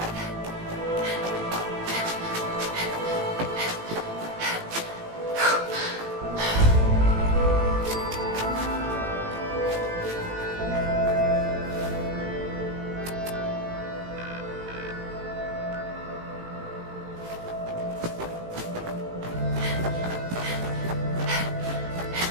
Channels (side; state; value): left; late; 18 ms